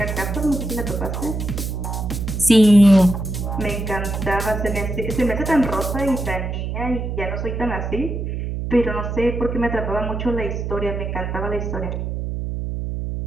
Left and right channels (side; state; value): right; noise; hum, 4 dB below the sound